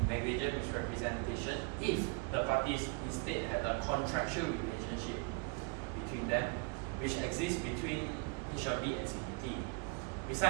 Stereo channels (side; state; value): left; quieter; 33.3 dB